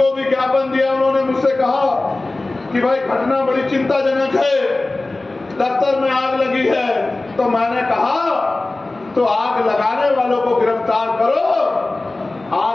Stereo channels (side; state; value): right; quieter; 3.0 dB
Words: भी ज्ञापन दिया। उन्होंने मुझसे कहा कि भाई घटना बड़ी चिंताजनक है, दफ्तर में आग लगी है। तो मैंने कहा तो आग लगाने वालों को गिरफ्तार करो,